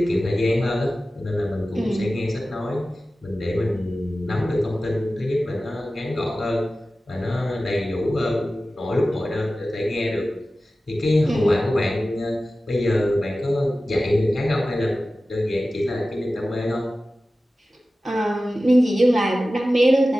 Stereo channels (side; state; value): both; normal; correlation 0.95